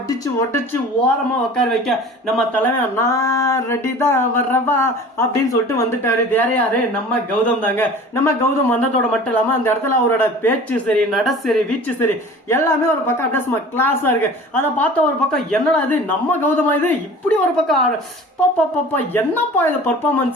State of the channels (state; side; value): normal; both; correlation 0.42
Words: உடைச்சு ஓரமா உட்கார வைக்க நம்ம தலைமை நான் ரெடி தான் வர்றவா அப்படின்னு சொல்லிட்டு வந்துட்டாரு. வேற யாரு? நம்ம கௌதம் தாங்க. நம்ம கௌதம் வந்ததோட மட்டும் இல்லாம அந்த இடத்துல அவரோட பேச்சு சரி, நட சரி, வீச்சு சரி, எல்லாமே ஒரு பக்கம் அப்படியே கிளாஸா இருக்கு. அதை பார்த்த ஒரு பக்கம் என்னடா இது நம்ம கௌதமா இது இப்படி ஒரு பக்கம் என்னப்பா இது